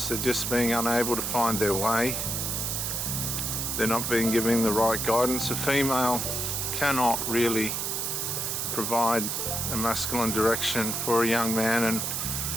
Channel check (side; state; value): right; noise; hiss, 1 dB below the sound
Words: they're just being unable to find their way. They're not being given the right guidance. A female cannot really provide a masculine direction for a young man